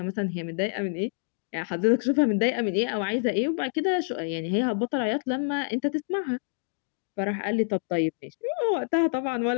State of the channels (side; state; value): right; silent; digital silence